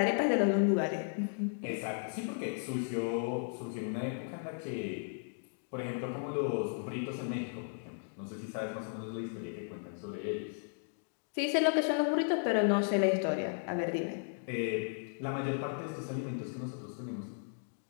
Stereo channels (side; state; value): right; silent; digital silence